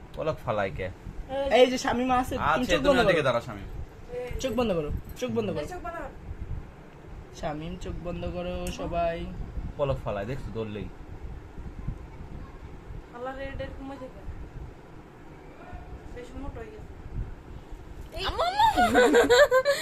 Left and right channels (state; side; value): identical; both; correlation 1.00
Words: पलक फलाई के এই যে শামিম আছে তুমি आज চোখ तुम বন্ধ देखे করো दारा शामी চোখ বন্ধ করো চোখ বন্ধ করো শামিম চোখ বন্ধ করো সবাই पलक फलाई देख दौड़ ली আল্লাহ রেড এর কমে যাবে বেশ মোটা হয়ে গেছে আম্মু আম্মু